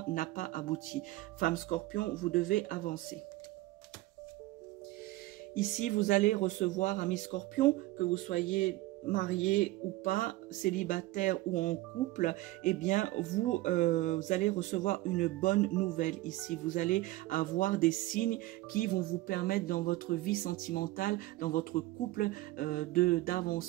n'a pas abouti. Femme Scorpion, vous devez avancer. Ici, vous allez recevoir, amis Scorpions, que vous soyez marié ou pas, célibataire ou en couple, eh bien, vous allez recevoir une bonne nouvelle ici. Vous allez avoir des signes qui vont vous permettre dans votre vie sentimentale, dans votre couple,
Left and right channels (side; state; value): left; quieter; 18.1 dB